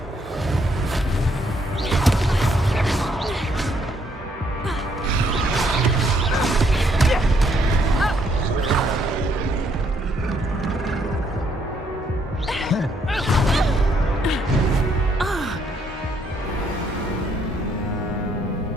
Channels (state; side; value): normal; both; correlation 0.70